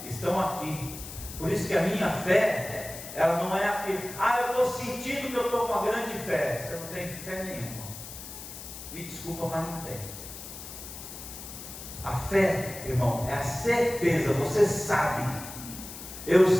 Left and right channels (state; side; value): noise; left; hiss, 12 dB below the sound